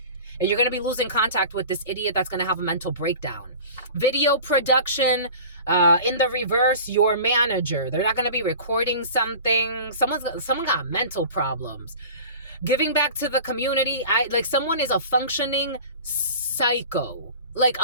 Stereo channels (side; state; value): both; inverted; correlation -0.38